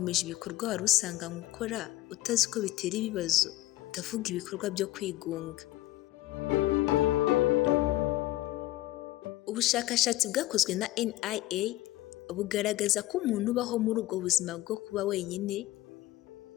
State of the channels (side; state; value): right; quieter; 16.5 dB